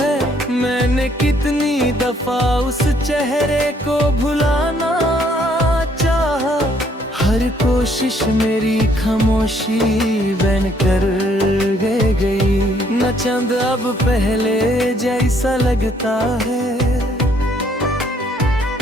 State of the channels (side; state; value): both; normal; correlation 0.66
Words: मैंने कितनी दफा उस चेहरे को भुलाना चाहा, हर कोशिश मेरी खामोशी बन कर गई। न चंद अब पहले जैसा लगता है,